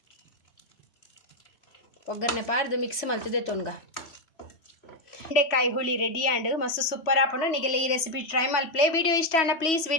ಒಗ್ಗರಣೆ ಪಾಡ್ದು ಮಿಕ್ಸ್ ಮಲ್ತದೆ ತೊನ್ಗ ಬೆಂಡೆಕಾಯಿ ಹುಳಿ ರೆಡಿ ಆಂಡ್ ಮಸ್ತ್ ಸೂಪರ್ ಆಪುಂಡು ನಿಗೆಲ್ಲ ಈ ರೆಸಿಪಿ ಟ್ರೈ ಮಲ್ಪ್ಲೆ. ವಿಡಿಯೋ ಇಷ್ಟ ಅಂಡ ಪ್ಲೀಸ್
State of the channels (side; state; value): right; late; 3.1 ms